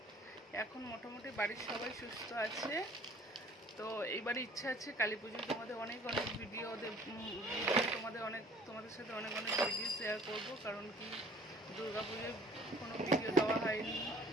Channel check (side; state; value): both; normal; correlation 0.53